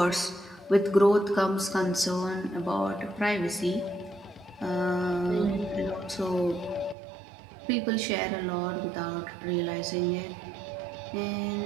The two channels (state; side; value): drops out; left; at 7.0 s